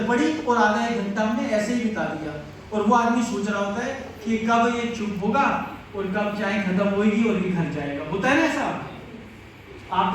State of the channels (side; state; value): both; identical; correlation 1.00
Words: पड़ी और आधा 1 घंटा हमने ऐसे ही बिता दिया। और वो आदमी सोच रहा होता है कि कब ये चुप होगा और कब चाय खत्म होगी और ये घर जाएगा। होता है ना ऐसा? आप